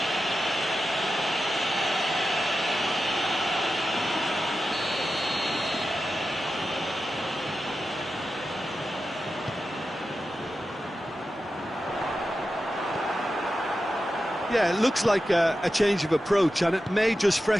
Yeah, it looks like a change of approach, and it may just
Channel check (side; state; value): both; normal; correlation 0.91